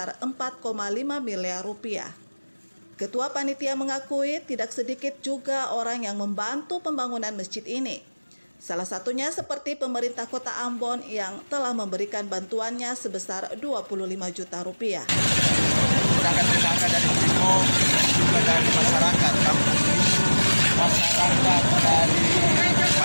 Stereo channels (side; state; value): both; inverted; correlation -1.00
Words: 4,5 miliar rupiah. Ketua Panitia mengakui tidak sedikit juga orang yang membantu pembangunan masjid ini. Salah satunya seperti pemerintah Kota Ambon yang telah memberikan bantuannya sebesar 25 juta rupiah. Tenaga dari Ciko, juga dari masyarakat kampung ini, masyarakat dari